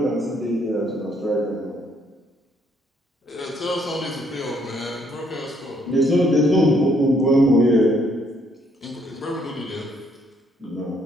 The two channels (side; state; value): both; normal; correlation 0.69